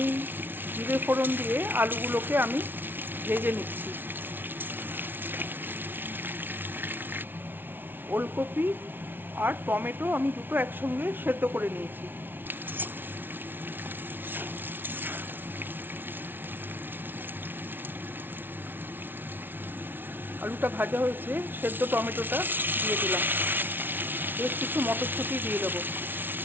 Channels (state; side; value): late; left; 0.099 ms